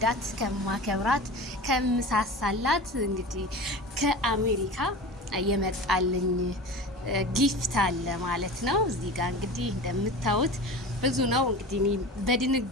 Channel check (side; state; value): both; normal; correlation 0.33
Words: ከማከብራት ከምሳሳላት እንግዲህ ከአሜሪካ የመጣልኝ ጊፍት አለ ማለት ነው። እዚህ ጋር እንግዲህ እንደምታዩት ብዙ ነው። እንግዲህ እኔ